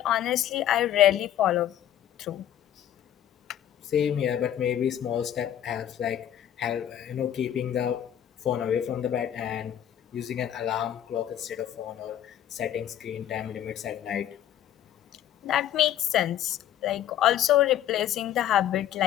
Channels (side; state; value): right; quieter; 11.0 dB